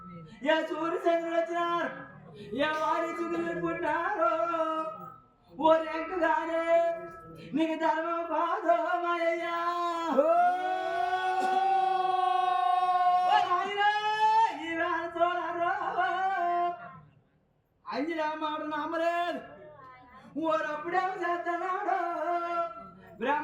ఏ సూర్యచంద్రుడు వచ్చినారు, ఏ వారి చుగులు పుట్టినారు. ఓ రెంకుగానే నీకు ధర్మం కాదు మాయ్యా. అంజరామాడు నమ్మలేదు, ఊరప్పుడేమో చేస్తున్నాడు.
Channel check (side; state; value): both; identical; correlation 1.00